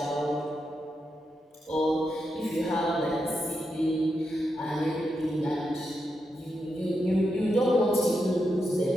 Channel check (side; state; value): both; normal; correlation 0.85